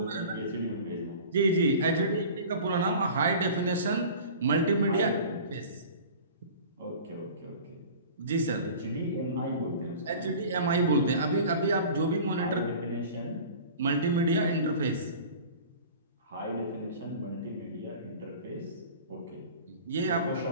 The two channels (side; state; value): both; inverted; correlation -0.41